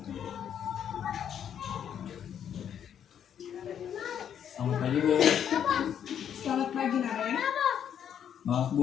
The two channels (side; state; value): right; quieter; 9.0 dB